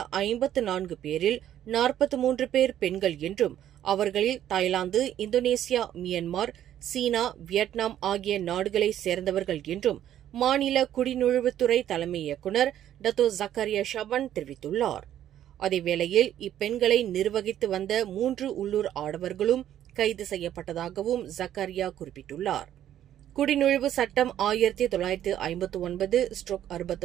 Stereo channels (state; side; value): quieter; left; 11.3 dB